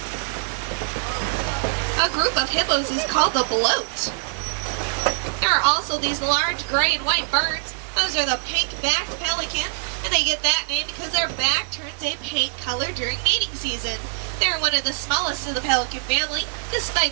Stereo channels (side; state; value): left; silent; digital silence